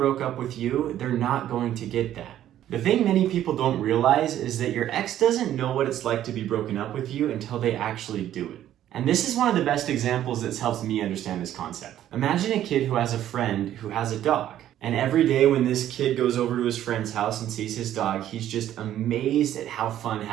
up with you, they're not going to get that. The thing many people don't realize is that your ex doesn't know what it's like to be broken up with you until they actually do it. And this is one of the best examples that's helped me understand this concept. Imagine a kid who has a friend who has a dog. And every day when this kid goes over to his friend's house and sees his dog, he's just amazed at how fun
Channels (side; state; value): left; quieter; 11.9 dB